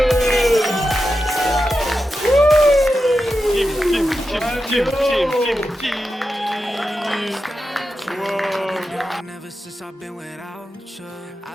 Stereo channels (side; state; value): both; normal; correlation 0.90